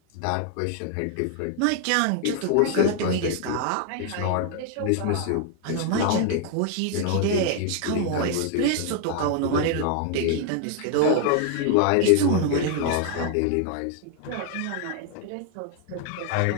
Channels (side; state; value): both; different; correlation 0.00